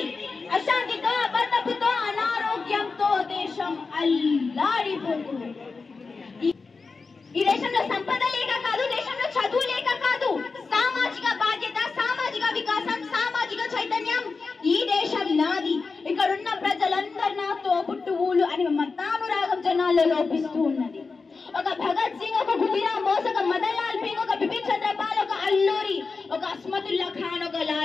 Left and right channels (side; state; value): right; quieter; 4.4 dB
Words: అశాంతితో అబద్ధపుతో అనారోగ్యంతో దేశం అల్లాడిపోతుంది. ఈ దేశంలో సంపద లేక కాదు, దేశంలో చదువు లేక కాదు, సామాజిక బాధ్యత, సామాజిక వికాసం, సామాజిక చైతన్యం. ఈ దేశం నాది, ఇక్కడున్న ప్రజలందరూ నాతో పుట్టువులు అని మతానురాగం జనాల్లో లోపిస్తూ ఉన్నది. ఒక భగత్ సింగ్, ఒక గుడిరామ్ బోస్, ఒక మదన్ లాల్ పింగ్, ఒక బిపిన్ చంద్రపాల్, ఒక అల్లూరి, ఒక అస్మతుల్లా ఖాన్, ఒక